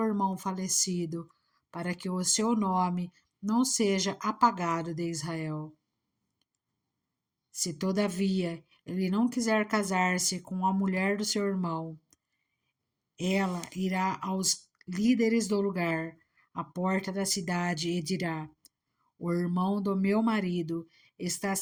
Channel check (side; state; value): both; identical; correlation 1.00